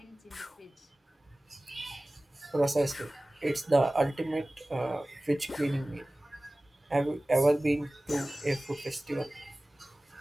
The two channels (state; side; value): normal; both; correlation 0.98